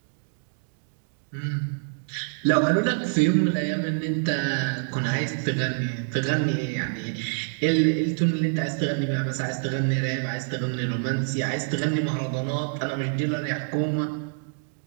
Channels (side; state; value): left; silent; digital silence